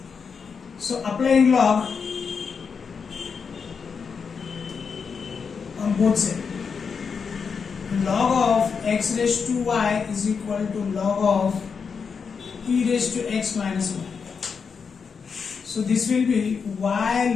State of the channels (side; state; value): right; quieter; 5.8 dB